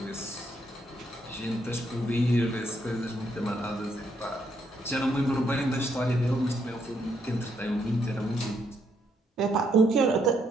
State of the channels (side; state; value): both; normal; correlation 0.75